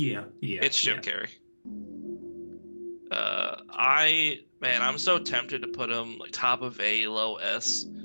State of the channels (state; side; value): inverted; both; correlation -1.00